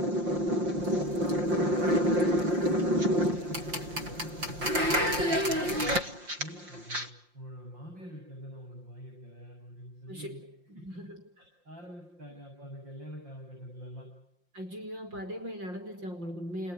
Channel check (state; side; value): late; left; 5.7 ms